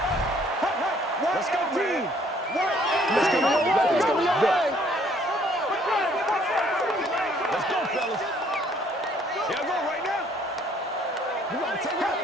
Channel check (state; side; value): normal; both; correlation 0.62